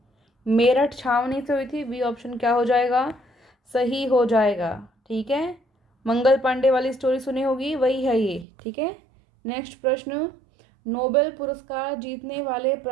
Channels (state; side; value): drops out; left; at 8.5 s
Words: मेरठ छावनी से हुई थी। बी ऑप्शन क्या हो जाएगा? सही हो जाएगा। ठीक है, मंगल पांडे वाली स्टोरी सुनी होगी, वही है ये। ठीक है, नेक्स्ट प्रश्न नोबेल पुरस्कार जीतने वाले